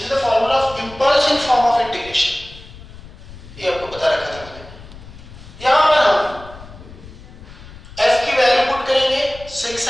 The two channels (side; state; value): left; noise; rumble, 17 dB below the sound